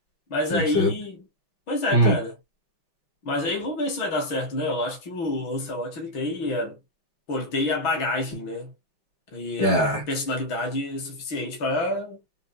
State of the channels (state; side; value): late; right; 6.1 ms